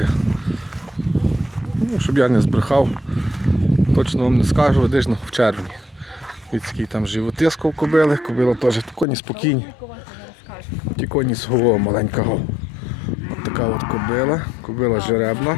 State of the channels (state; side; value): drops out; right; at 9.1 s